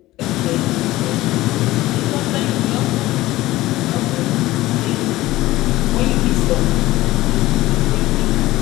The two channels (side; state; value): right; quieter; 17.3 dB